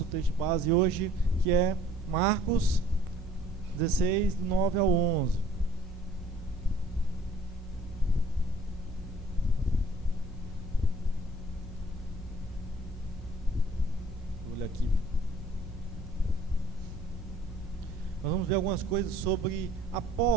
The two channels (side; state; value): both; normal; correlation 0.55